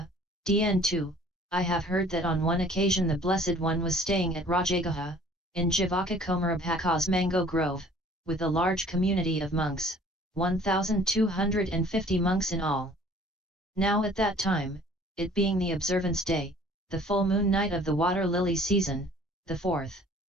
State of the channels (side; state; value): both; normal; correlation 0.53